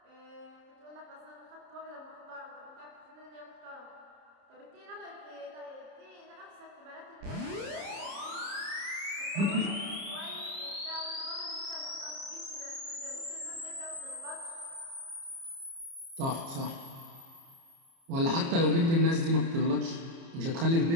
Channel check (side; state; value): left; late; 30 ms